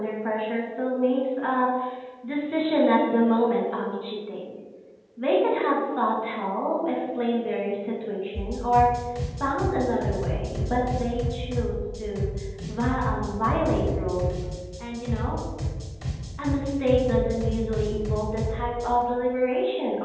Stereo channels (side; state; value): both; identical; correlation 1.00